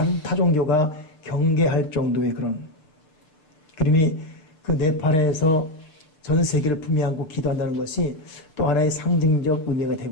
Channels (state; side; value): late; right; 6.7 ms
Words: 타종교가 경계할 정도의 그런 그림이 그 네팔에서 전 세계를 품에 안고 기도한다는 것이 또 하나의 상징적 의미가